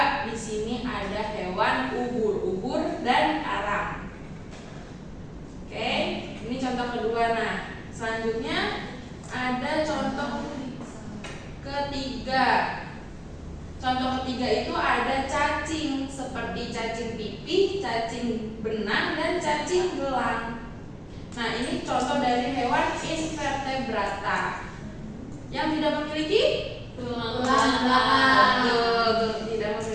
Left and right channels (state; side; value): identical; both; correlation 1.00